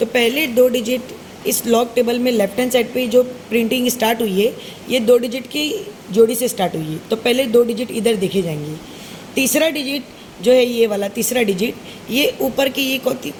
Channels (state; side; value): identical; both; correlation 1.00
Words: पहले 2 डिजिट इस लॉग टेबल में लेफ्ट हैंड साइड पे जो प्रिंटिंग स्टार्ट हुई है ये 2 डिजिट की जोड़ी से स्टार्ट हुई है, तो पहले 2 डिजिट इधर देखे जाएंगे। तीसरा डिजिट जो है ये वाला तीसरा डिजिट ये ऊपर के ये